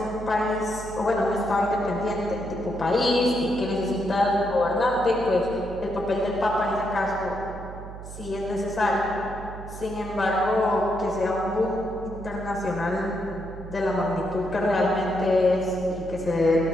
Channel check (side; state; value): right; noise; hum, 12 dB below the sound